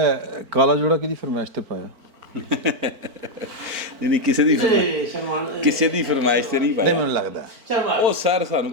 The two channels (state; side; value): late; left; 4.4 ms